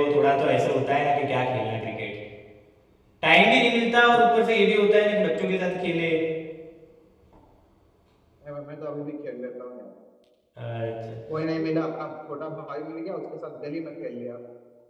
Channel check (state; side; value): identical; both; correlation 1.00